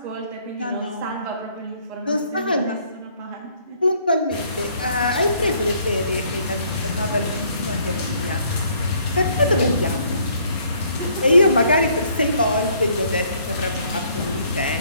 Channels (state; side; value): inverted; both; correlation -0.64